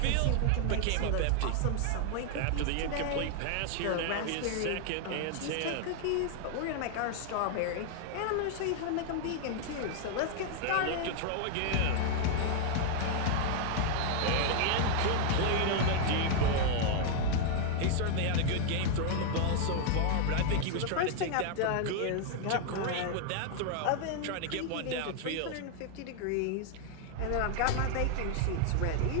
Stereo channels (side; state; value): both; different; correlation 0.00